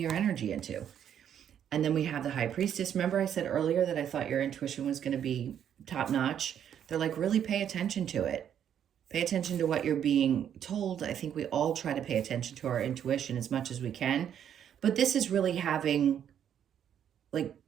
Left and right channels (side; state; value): left; quieter; 9.3 dB